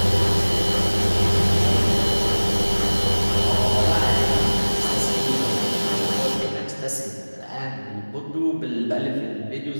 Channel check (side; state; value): both; inverted; correlation -1.00